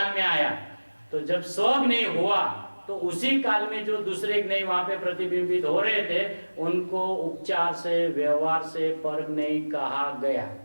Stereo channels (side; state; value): both; inverted; correlation -1.00